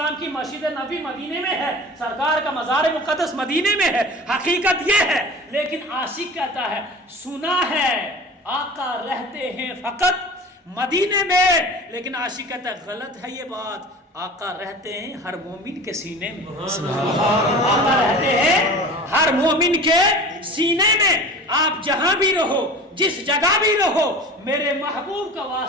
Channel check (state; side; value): normal; both; correlation 0.37